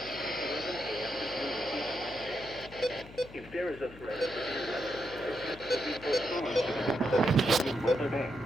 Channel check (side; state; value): left; noise; hum, 18 dB below the sound